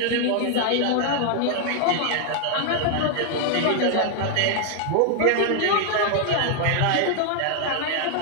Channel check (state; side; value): different; both; correlation 0.00